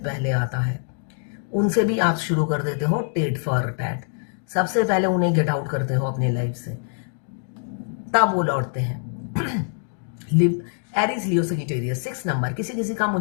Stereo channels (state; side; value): silent; right; digital silence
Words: पहले आता है, उनसे भी आप शुरू कर देते हो टीट फॉर टैट, सबसे पहले उन्हें गेट आउट करते हो अपनी लाइफ से, तब वो लौटते हैं। एरीज लियो सजिटेरियस 6 नंबर, किसी किसी का